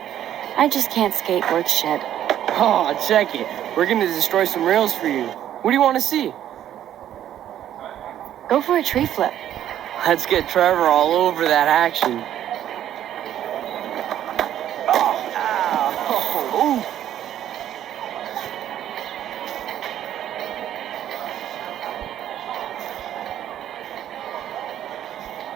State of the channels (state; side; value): quieter; left; 11.3 dB